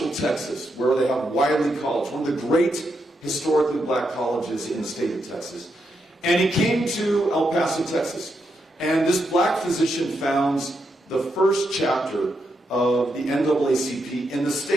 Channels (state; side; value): normal; both; correlation 0.82